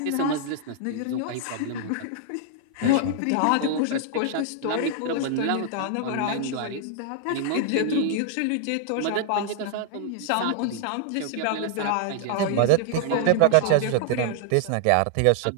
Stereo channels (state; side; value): different; both; correlation -0.01